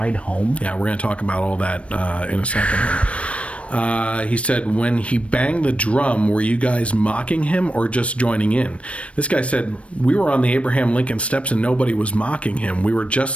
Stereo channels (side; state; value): right; late; 0.062 ms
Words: home? Yeah, we're going to talk about all that in a second here. He said, "When he banged the drum, were you guys mocking him or just joining in?" This guy said, "We were on the Abraham Lincoln steps and nobody was mocking him. We were